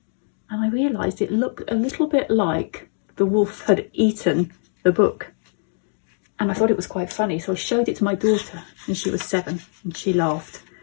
And I realised it looked a little bit like the wolf had eaten the book. And I thought it was quite funny, so I showed it to my daughter, and she was 7, and she laughed.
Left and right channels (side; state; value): right; silent; 63 dB below the other